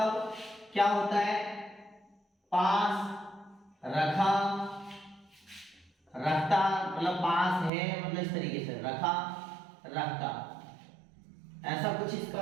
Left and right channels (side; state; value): left; drops out; at 7.7 s